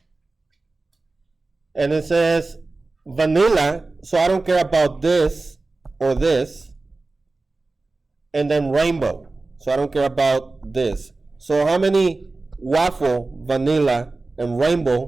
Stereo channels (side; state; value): left; quieter; 3.4 dB